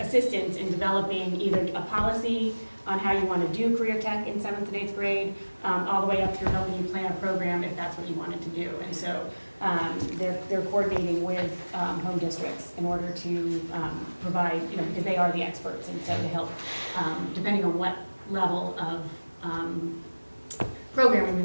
in developing either a policy on how you want to do career tech in 7th and 8th grade, all the way up through helping you plan a program if that's what you wanted to do. And so they're coordinating with home districts in order to provide, because they are the experts, and so to help, depending on what level of programming we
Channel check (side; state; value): both; inverted; correlation -1.00